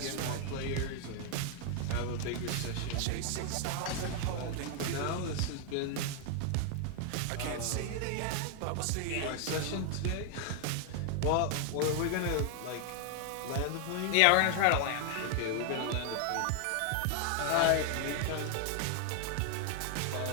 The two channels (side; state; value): both; different; correlation 0.00